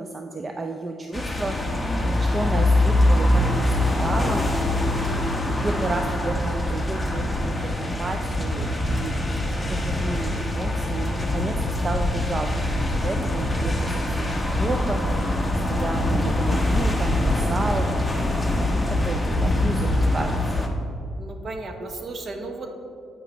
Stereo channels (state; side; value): normal; both; correlation 0.83